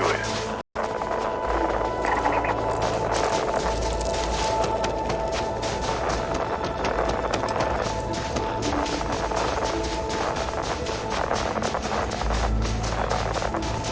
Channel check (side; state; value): both; identical; correlation 1.00